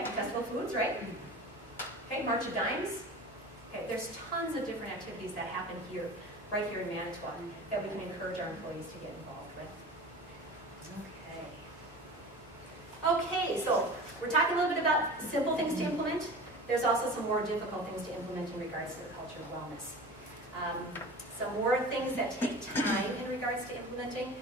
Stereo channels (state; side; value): normal; both; correlation 0.35